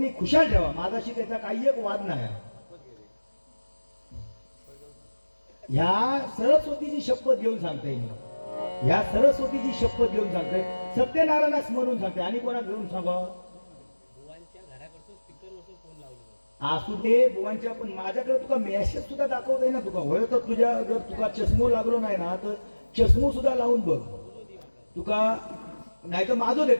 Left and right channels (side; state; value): both; inverted; correlation -1.00